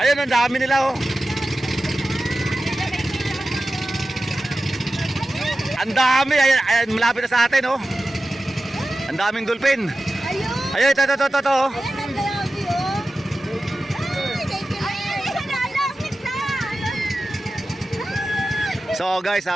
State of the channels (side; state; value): both; normal; correlation 0.94